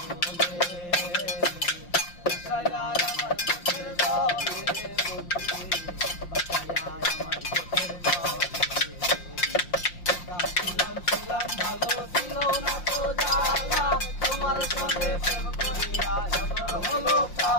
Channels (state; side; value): late; right; 5.7 ms